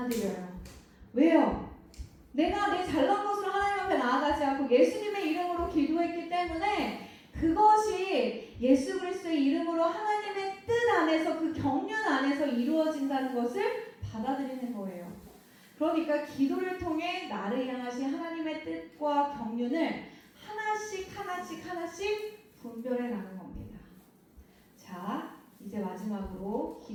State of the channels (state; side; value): identical; both; correlation 1.00